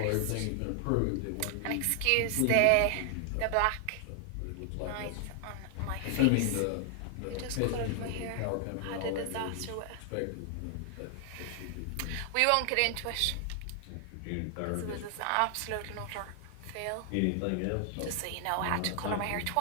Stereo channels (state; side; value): different; both; correlation 0.00